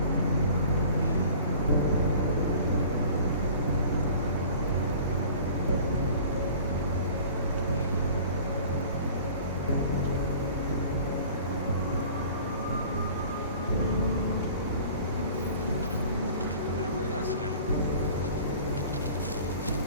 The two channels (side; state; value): both; inverted; correlation -0.45